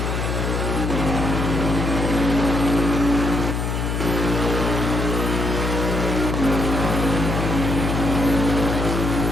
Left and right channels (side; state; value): left; noise; hum, 1 dB below the sound